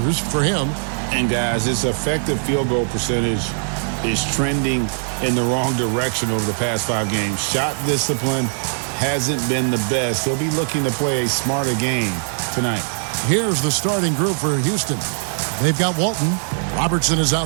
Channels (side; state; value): left; silent; digital silence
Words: for him. And guys, his effective field goal percentage is trending in the wrong direction over the past 5 games. Shot discipline hasn't been the best. He'll be looking to play a smarter game tonight. Here's the starting group for Houston. They've got Walton. Robertson is